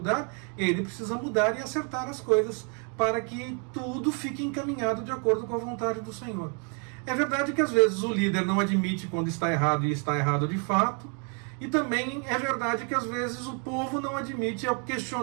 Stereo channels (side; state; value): left; quieter; 38.5 dB